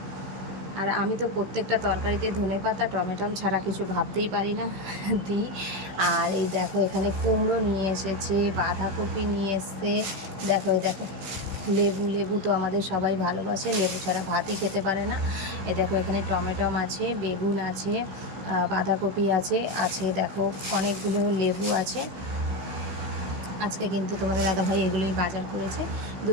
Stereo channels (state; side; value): late; left; 16 ms